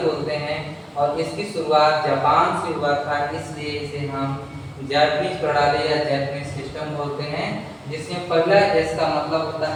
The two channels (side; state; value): both; identical; correlation 1.00